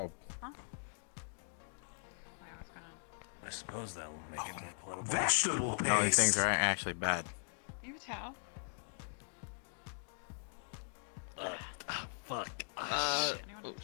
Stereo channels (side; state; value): right; silent; digital silence